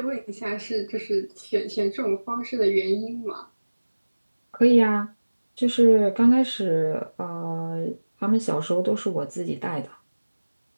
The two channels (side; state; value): both; inverted; correlation -1.00